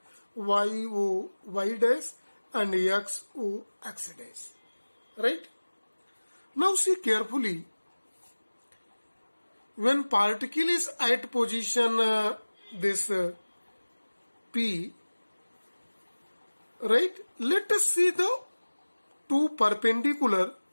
YO Y dash and XO X dash. Right? Now see carefully. When particle is at position this P, right? Let us see the 2 perpendicular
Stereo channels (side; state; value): both; inverted; correlation -1.00